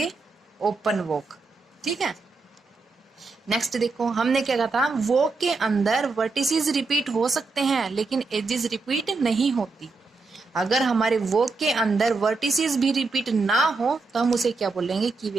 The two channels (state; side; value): quieter; left; 3.9 dB